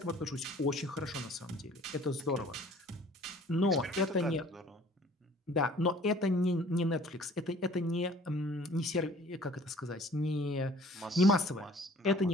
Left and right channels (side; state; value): both; normal; correlation 0.52